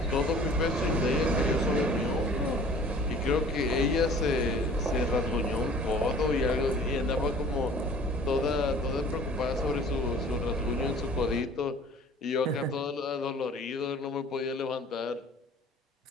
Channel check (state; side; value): normal; both; correlation 0.49